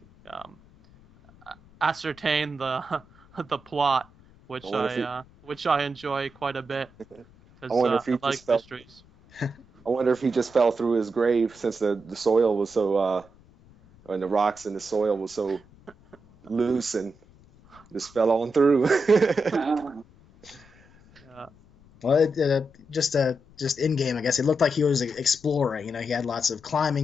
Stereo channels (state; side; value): noise; left; rumble, 26 dB below the sound